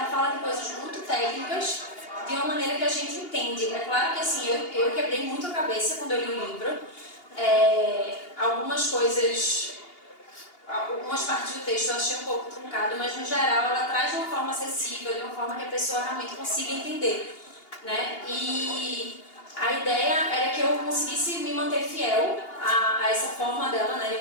fala de coisas muito técnicas de uma maneira que a gente entende. É claro que assim, eu quebrei muito a cabeça quando eu li o livro. Algumas coisas, algumas partes do texto eu achei um pouco truncado, mas no geral ela traz de uma forma acessível, de uma forma que a pessoa realmente consiga entender, né? E a ideia era que eu conseguisse me manter fiel a essa forma dela, né, de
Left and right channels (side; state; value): right; late; 2.8 ms